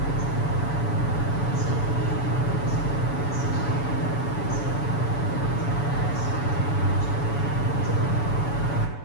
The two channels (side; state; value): right; late; 7.0 ms